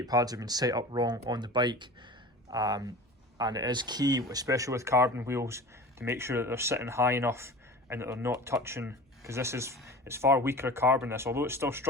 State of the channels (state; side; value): normal; both; correlation 0.36